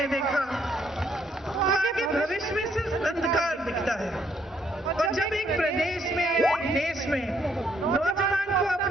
देखा, आगे भविष्य में सिर्फ अंधकार दिखता है। और जब एक प्रदेश में, एक देश में नौजवान को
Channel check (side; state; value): both; normal; correlation 0.70